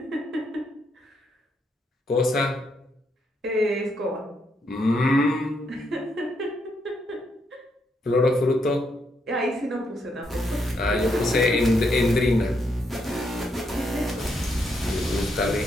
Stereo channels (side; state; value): both; normal; correlation 0.77